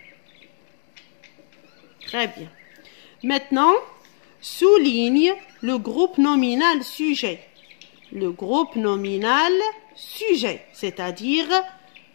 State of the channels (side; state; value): right; silent; digital silence